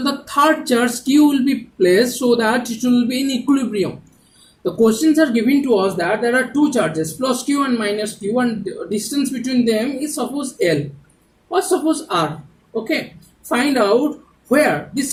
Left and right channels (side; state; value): both; identical; correlation 1.00